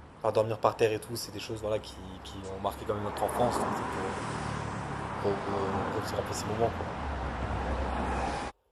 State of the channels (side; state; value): both; identical; correlation 1.00